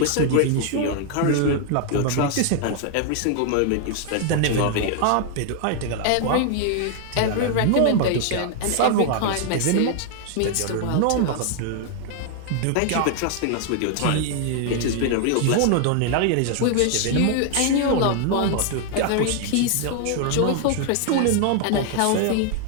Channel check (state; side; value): different; both; correlation 0.00